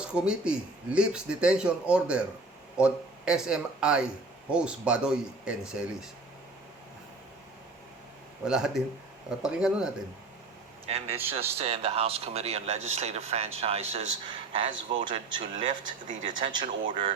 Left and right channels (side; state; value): left; quieter; 3.4 dB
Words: Committee lifts detention order on SMI host Badoy and Celis. Wala din. Pakinggan natin. And it's just in the House Committee on Legislative Franchises has voted to lift the detention